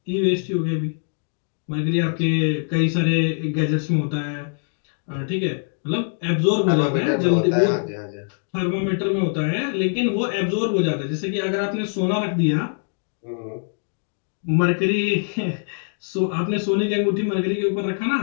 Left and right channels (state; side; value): silent; right; digital silence